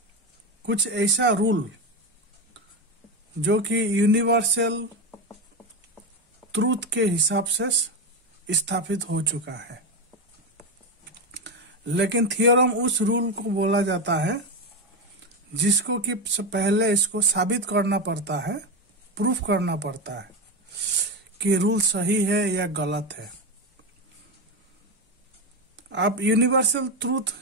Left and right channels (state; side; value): normal; both; correlation 0.14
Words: कुछ ऐसा रूल जो कि यूनिवर्सल ट्रूथ के हिसाब से स्थापित हो चुका है, लेकिन थियोरम उस रूल को बोला जाता है जिसको कि पहले इसको साबित करना पड़ता है, प्रूफ करना पड़ता है कि रूल सही है या गलत है। अब यूनिवर्सल ट्रूथ